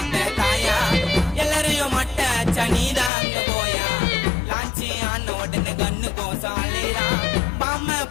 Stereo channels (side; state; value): right; drops out; at 3.1 s